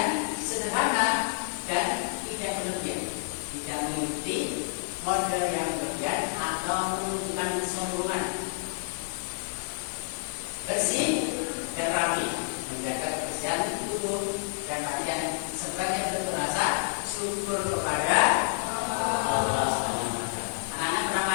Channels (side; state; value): right; silent; digital silence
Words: sederhana dan tidak berlebihan, tidak mengikuti model yang berlebihan atau menunjukkan kesombongan. Bersih dan rapi, menjaga kebersihan tubuh dan hati sebagai bentuk rasa syukur kepada Allah SWT. Anak-anak pernah